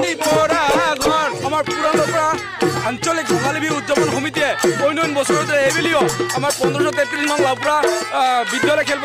পৰা ঘৰ আমাৰ পুৰণা আঞ্চলিক ৰঙালী বিহু উদযাপন সমিতিয়ে অন্য বছৰতে এইবেলিও আমাৰ 1533 নং লাউপুৰা বিদ্যালয়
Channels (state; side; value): identical; both; correlation 1.00